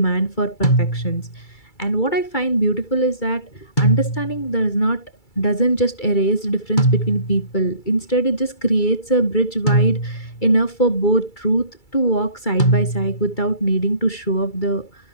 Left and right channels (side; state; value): right; late; 2.3 ms